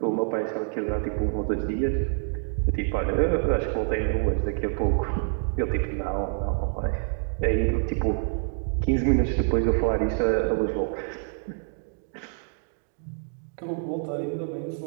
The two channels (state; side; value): silent; left; 60 dB below the other